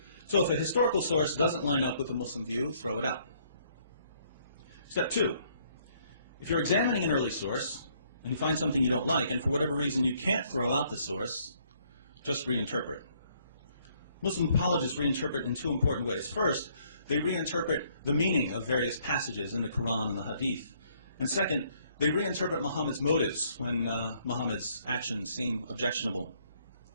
So if a historical source doesn't line up with the Muslim view, throw it out. Step 2, if you're examining an early source and you find something you don't like, and for whatever reason you can't throw out the source, just reinterpret. Muslim apologists reinterpret in 2 important ways. First, they reinterpret the meaning of various passages in the Quran and the Hadith. And second, they reinterpret Muhammad's motives when Muhammad's actions seem objectionable.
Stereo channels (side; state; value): both; inverted; correlation -0.66